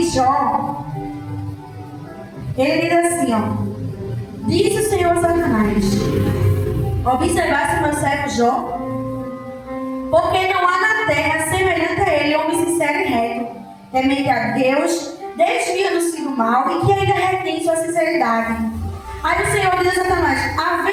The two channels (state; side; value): identical; both; correlation 1.00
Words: Jó, ele diz assim, ó: disse o Senhor Satanás: observasse meu servo Jó, porque não há na terra semelhante a ele homem sincero e reto, temente a Deus, desviando-se do mal e que ainda retém sua sinceridade. Aí o Senhor diz a Satanás: